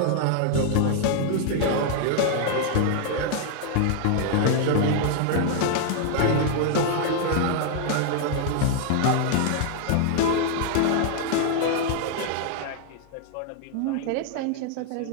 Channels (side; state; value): both; different; correlation 0.00